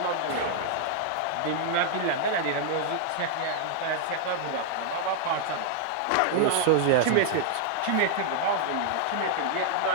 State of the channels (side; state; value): both; different; correlation 0.00